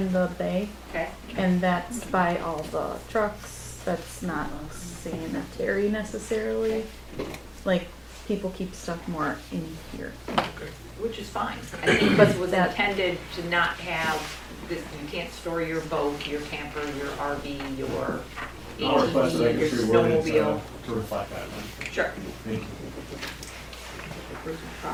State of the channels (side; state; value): both; identical; correlation 1.00